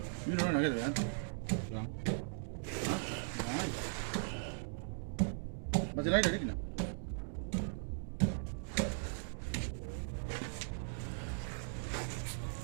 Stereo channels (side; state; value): left; silent; digital silence